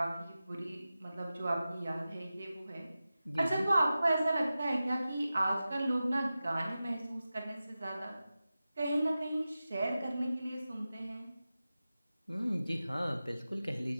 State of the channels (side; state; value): both; inverted; correlation -0.94